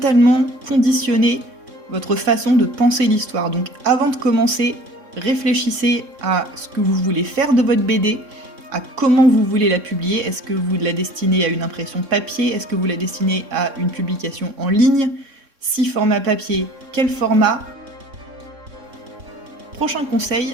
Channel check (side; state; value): left; late; 3.6 ms